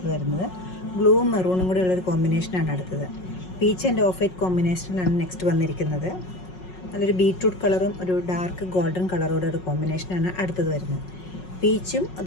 വരുന്നത്. ബ്ലൂവും മെറൂണും കൂടെ ഉള്ളൊരു കോമ്പിനേഷനാണ് അടുത്തത്. പീച്ച് ആൻഡ് ഓഫ് വൈറ്റ് കോമ്പിനേഷനിലാണ് നെക്സ്റ്റ് വന്നിരിക്കുന്നത്. നല്ലൊരു ബീട്രൂട്ട് കളറും ഒരു ഡാർക്ക് ഗോൾഡൻ കളറോടെ ഒരു കോമ്പിനേഷനാണ് അടുത്തത് വരുന്നത്. പീച്ചും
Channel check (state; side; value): late; right; 5.4 ms